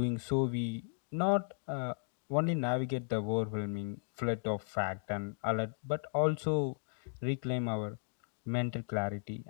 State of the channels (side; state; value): right; silent; digital silence